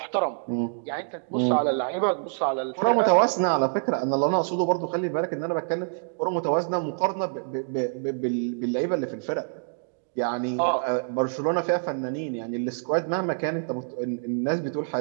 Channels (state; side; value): silent; left; digital silence